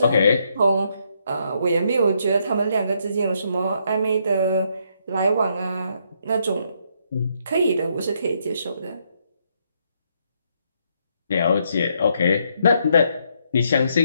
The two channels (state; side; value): inverted; both; correlation -0.74